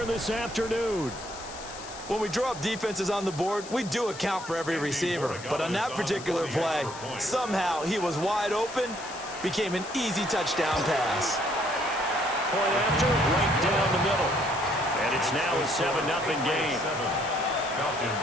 this afternoon. When we draw up defenses on the board, we do account for every receiver. But on that particular play, somehow he was wide open, became an easy touchdown pass. Point after, right down the middle. And it's now a 7-0 game.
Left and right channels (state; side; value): noise; left; hiss, 14 dB below the sound